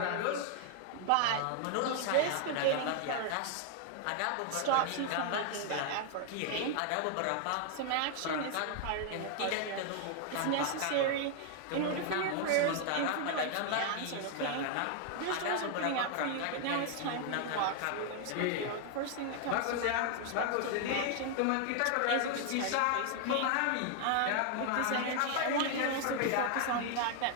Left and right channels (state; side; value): different; both; correlation 0.00